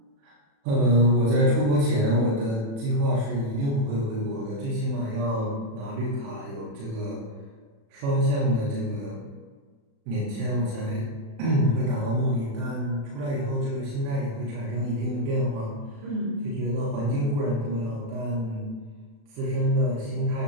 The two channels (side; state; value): left; late; 36 ms